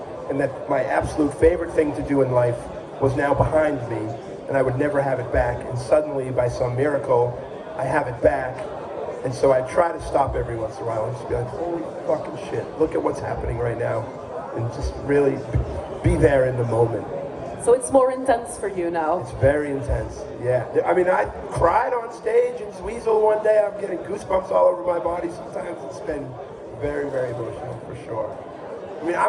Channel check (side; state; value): both; identical; correlation 1.00